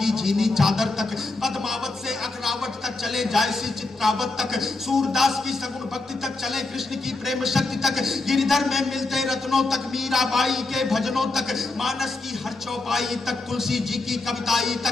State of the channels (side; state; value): right; quieter; 3.4 dB